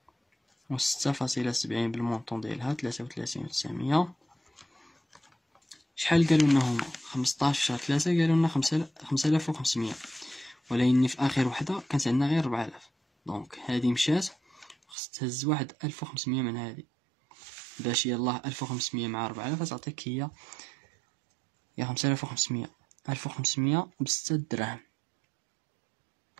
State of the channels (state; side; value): drops out; left; at 15.0 s